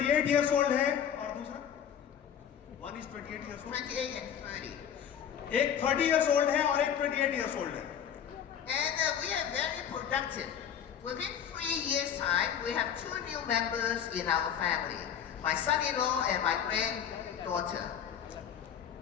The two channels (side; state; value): right; quieter; 8.8 dB